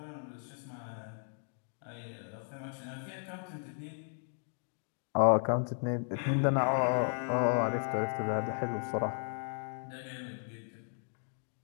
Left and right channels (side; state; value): right; silent; 54 dB below the other